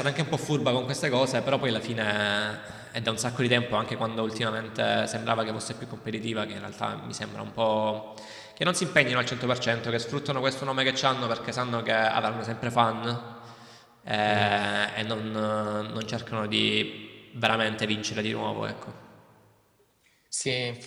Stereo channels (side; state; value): both; identical; correlation 1.00